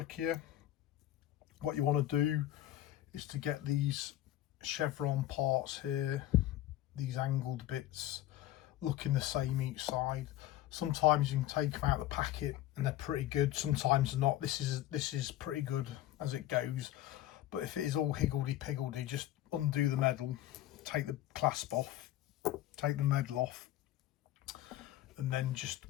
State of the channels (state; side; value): quieter; right; 13.9 dB